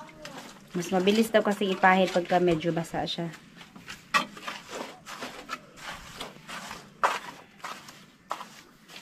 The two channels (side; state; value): both; identical; correlation 1.00